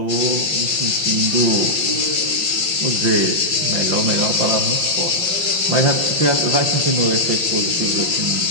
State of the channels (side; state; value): left; late; 5.8 ms